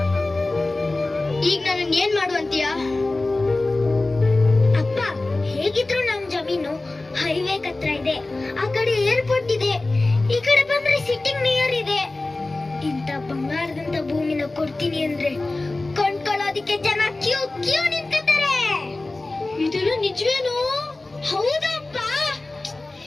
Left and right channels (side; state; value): right; quieter; 3.0 dB